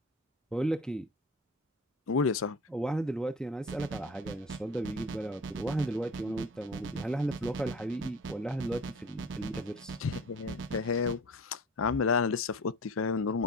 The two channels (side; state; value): both; normal; correlation 0.39